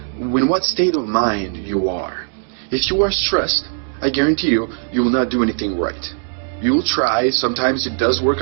In what state of mind you are. If you are stressed, I guarantee you, you will not do anything right. You will try, sometimes it does work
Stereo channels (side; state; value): left; silent; 67 dB below the other